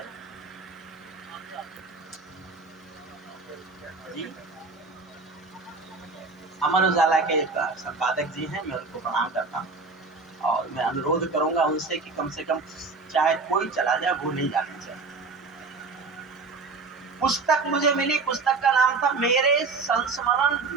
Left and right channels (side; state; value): left; quieter; 4.1 dB